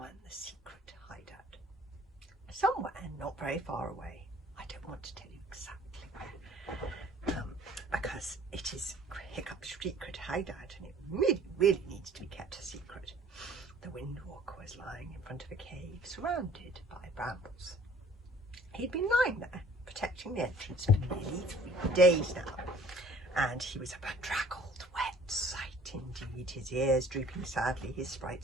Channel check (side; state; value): both; normal; correlation 0.54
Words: The Secret Hideout. Somewhere not very far away, I don't want to tell you exactly where, because it is Hiccup's secret hideout and it really needs to be kept a secret. The Windwalker was lying in front of a cave surrounded by brambles. He'd been lying there, protecting the entrance for nearly 3 days now, and he was a bedraggled, wet sight indeed, his ears drooping sadly, his